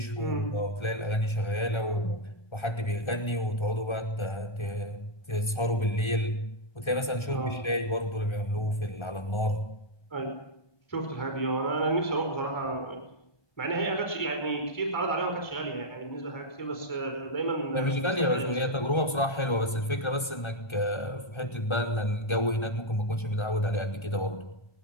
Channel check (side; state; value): right; late; 1.3 ms